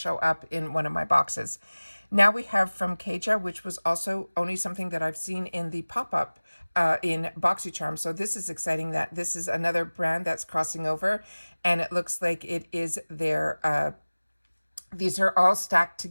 up in one of my boxes. Now we have from Kaja, which was also only something that I've seen in the pop-up in BoxyCharm. So this is exciting that this is another brand that's crossing over, and it looks like it is their these are all stacked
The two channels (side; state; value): both; inverted; correlation -1.00